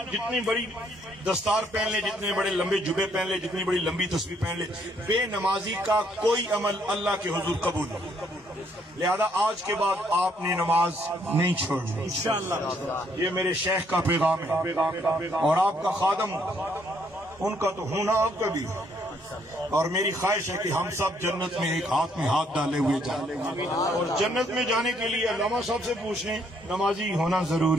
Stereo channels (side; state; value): both; normal; correlation 0.69